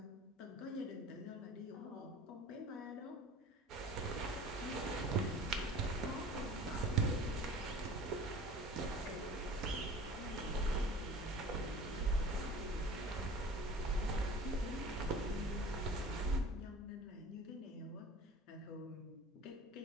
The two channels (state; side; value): normal; both; correlation 0.42